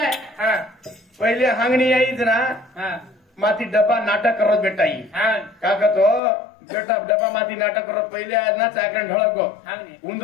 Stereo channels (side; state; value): right; drops out; at 6.2 s